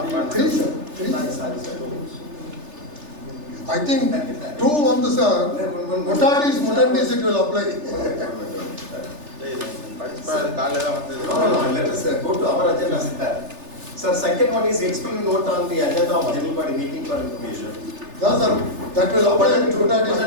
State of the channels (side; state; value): left; late; 3.4 ms